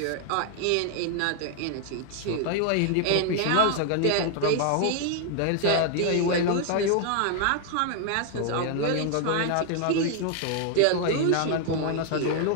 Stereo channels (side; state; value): both; different; correlation 0.00